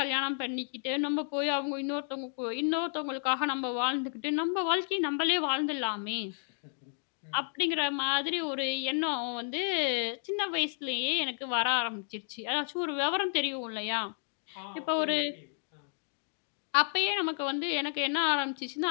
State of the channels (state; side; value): silent; right; digital silence